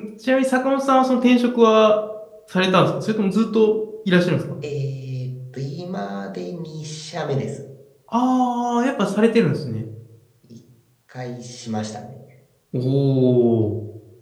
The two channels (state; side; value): identical; both; correlation 1.00